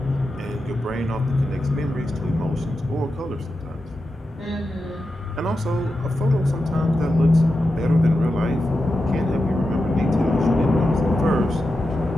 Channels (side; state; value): both; normal; correlation 0.90